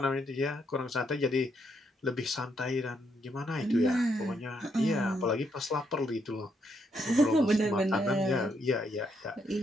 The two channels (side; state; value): both; normal; correlation 0.76